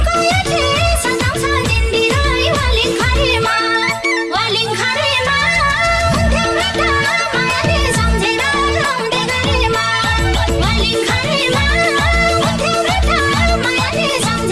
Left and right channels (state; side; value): identical; both; correlation 1.00